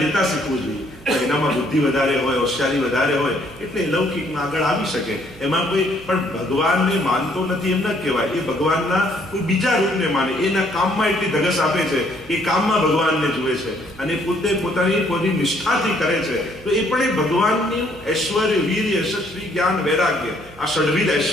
લેતા શીખવું જોઈએ. એનામાં બુદ્ધિ વધારે હોય, હોશિયારી વધારે હોય એટલે લૌકિકમાં આગળ આવી શકે. એમાં કોઈ પણ ભગવાનને માનતો નથી એમ ન કહેવાય. એ ભગવાનના કોઈ બીજા રૂપને માને, એના કામમાં એટલી ધગસ આપે છે, એ કામમાં ભગવાનને જુએ છે અને પોતે પોતાની નિષ્ઠાથી કરે છે તો એ પણ એ ભગવાનની ઐશ્વર્ય, વીર, યશસ્વી, જ્ઞાન, વૈરાગ્ય આ ષડવિધ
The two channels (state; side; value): noise; right; hum, 21 dB below the sound